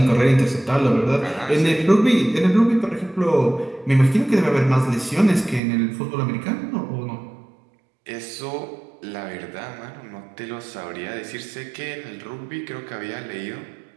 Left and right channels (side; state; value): left; drops out; at 5.6 s